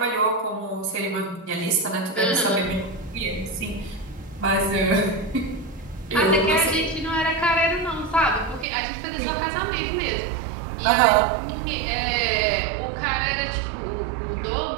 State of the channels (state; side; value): drops out; left; at 8.7 s